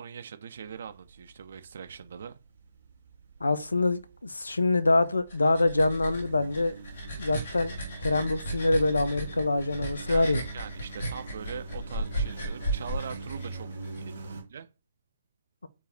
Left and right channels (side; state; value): both; inverted; correlation -0.88